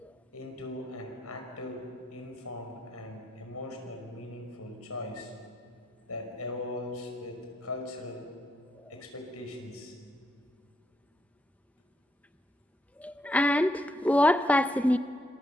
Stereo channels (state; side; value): normal; both; correlation 0.77